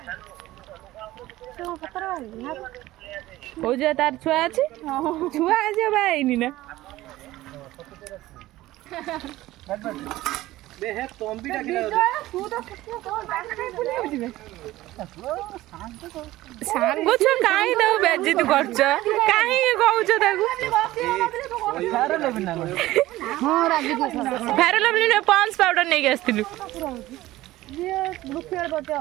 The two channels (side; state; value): left; quieter; 16.7 dB